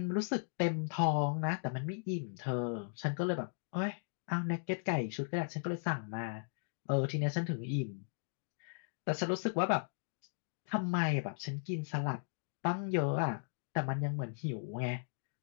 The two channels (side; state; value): right; silent; digital silence